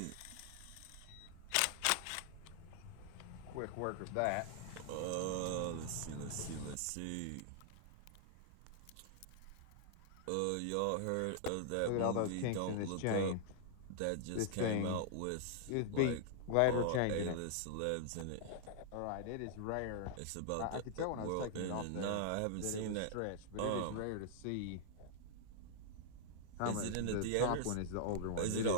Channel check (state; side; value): different; both; correlation -0.01